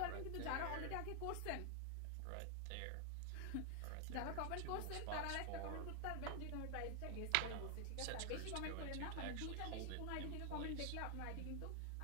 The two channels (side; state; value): both; different; correlation 0.00